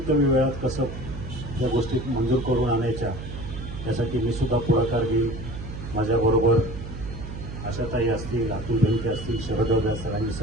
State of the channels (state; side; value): noise; right; hum, 9 dB below the sound